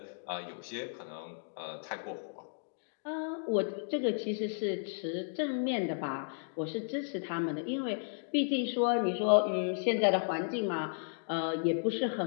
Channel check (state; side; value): silent; right; digital silence